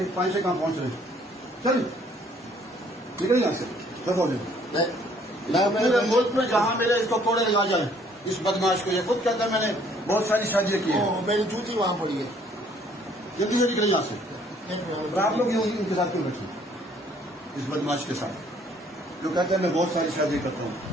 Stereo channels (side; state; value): both; normal; correlation 0.61